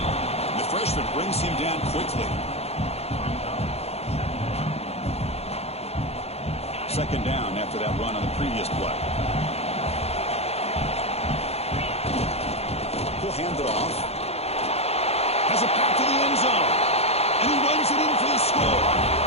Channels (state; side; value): late; right; 0.30 ms